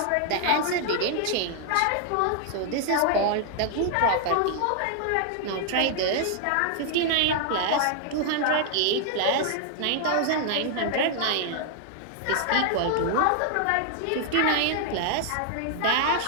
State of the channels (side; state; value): both; different; correlation 0.00